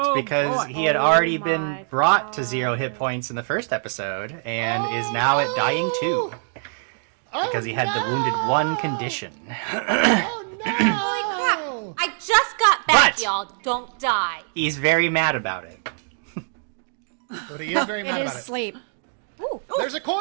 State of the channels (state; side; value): silent; left; digital silence